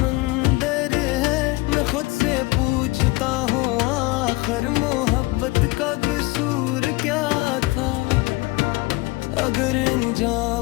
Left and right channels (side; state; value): right; quieter; 22.1 dB